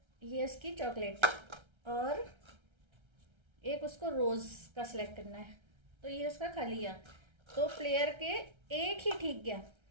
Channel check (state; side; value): late; left; 1.3 ms